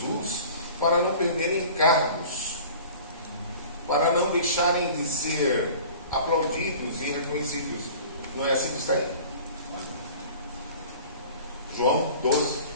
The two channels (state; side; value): inverted; both; correlation -0.43